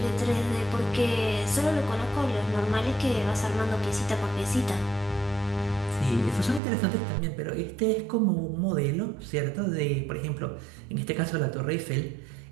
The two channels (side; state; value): left; drops out; at 6.6 s